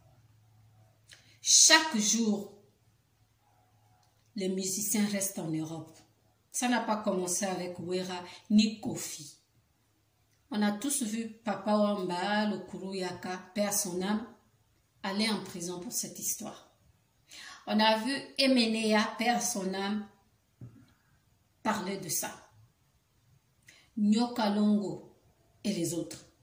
Chaque jour, les musiciens restent en Europe. Ça n'a pas commencé avec Wera ni Kofi. On a tous vu Papa Wamba, le Kuruyaka, paix à son âme, aller en prison pour cette histoire. On a vu Emenea, paix à son âme, parler de ça. Nyoka Longo et les autres.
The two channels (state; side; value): identical; both; correlation 1.00